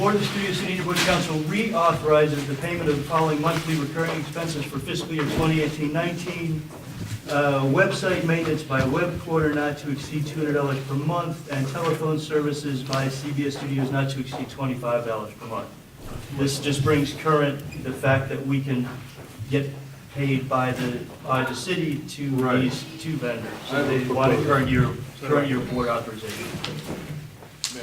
of the Studio City Neighborhood Council reauthorizes the payment of the following monthly recurring expenses for fiscal year 2018-19. Website maintenance by web quarter not to exceed $200 per month, and telephone services by CBS Studios not to exceed $25 per month. This just brings current the fact that we can get paid by the city to these two vendors. So they want a current year board authorization. May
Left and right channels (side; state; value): both; identical; correlation 1.00